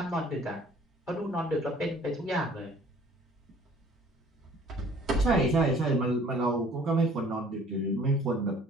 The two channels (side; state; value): both; normal; correlation 0.54